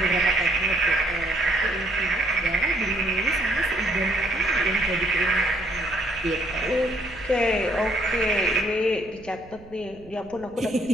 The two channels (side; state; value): right; noise; rumble, 21 dB below the sound